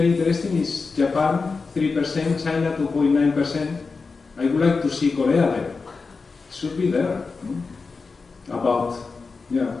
interesting is Japan 3%, China 2.9%. I would like to see Korea there. It should be there. About,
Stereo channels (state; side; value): quieter; right; 4.4 dB